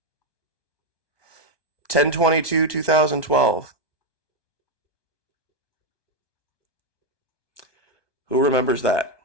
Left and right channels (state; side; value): late; right; 1.2 ms